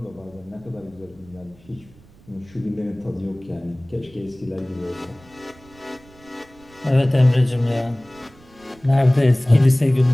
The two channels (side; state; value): right; noise; rumble, 26 dB below the sound